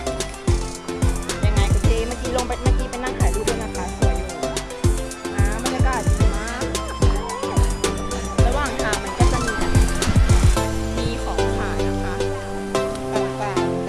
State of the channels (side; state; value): both; identical; correlation 1.00